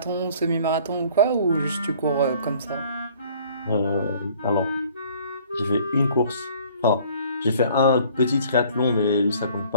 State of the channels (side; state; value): both; inverted; correlation -0.53